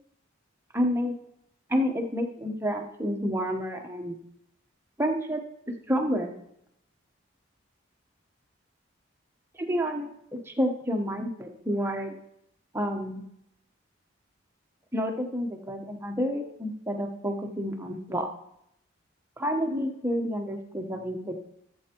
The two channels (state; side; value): normal; both; correlation 0.71